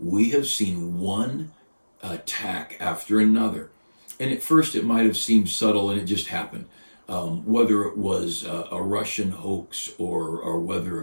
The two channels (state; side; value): inverted; both; correlation -1.00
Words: have seen one attack after another. And at first it might have seemed subtle and it just happened. Whether it was a Russian hoax or whether